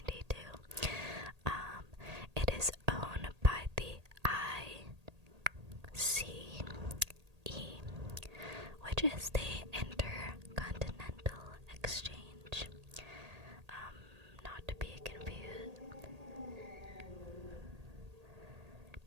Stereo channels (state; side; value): late; left; 1.8 ms